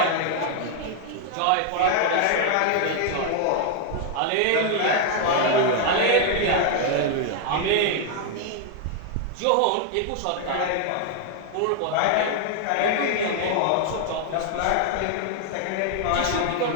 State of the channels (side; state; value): both; different; correlation 0.00